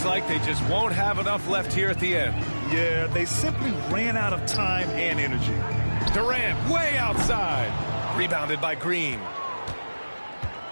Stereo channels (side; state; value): both; inverted; correlation -1.00